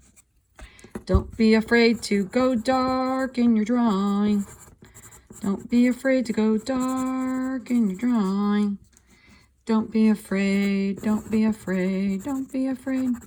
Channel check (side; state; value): both; identical; correlation 1.00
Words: Don't be afraid to go dark in your drawing. Don't be afraid to go dark in your drawing. Don't be afraid, don't be afraid, don't be afraid